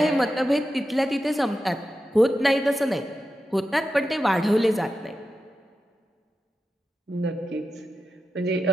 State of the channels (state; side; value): normal; both; correlation 0.91